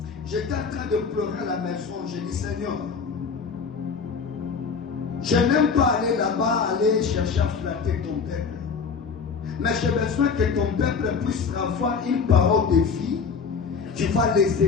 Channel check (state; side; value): quieter; right; 5.5 dB